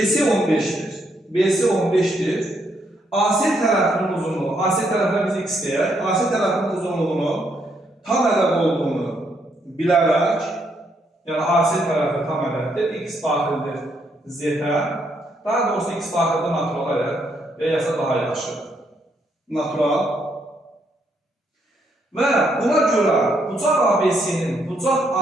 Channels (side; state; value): both; normal; correlation 0.75